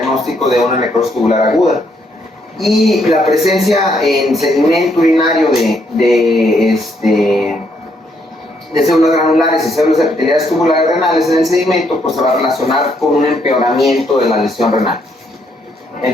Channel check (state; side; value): normal; both; correlation 0.73